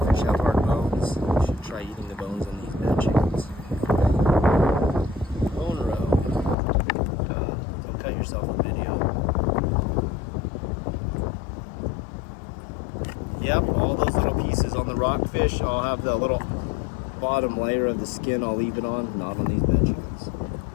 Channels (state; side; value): drops out; right; at 6.6 s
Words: have hard bones. You should try eating the bones on these bad chickens. Bone row. Don't cut yourself in video. Yep, all those little pieces on the rockfish, I'll have the little bottom layer of the skin, I'll leave it on, not on these bad chickens.